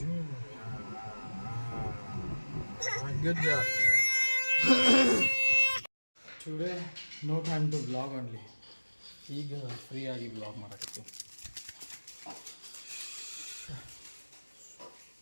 Good job. Today no time to vlog only. ಈಗ ಫ್ರೀ ಆಗಿ ವ್ಲಾಗ್ ಮಾಡಕತ್ತಿ.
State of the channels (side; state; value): both; inverted; correlation -1.00